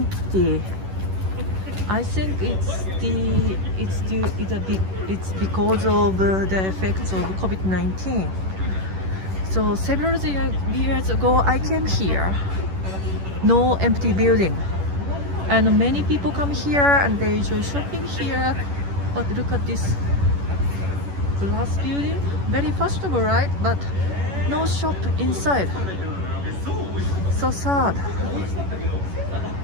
I think it's because of the effects of COVID-19. So several years ago, I came here, no empty building, and many people come here and they enjoy shopping here. But look at this glass building, very fashionable, right? But no shop inside. So sad.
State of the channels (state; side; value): late; left; 11 ms